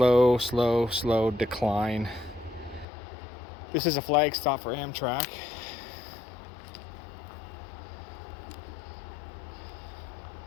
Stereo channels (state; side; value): drops out; right; at 2.9 s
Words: decline. This is a flag stop for Amtrak.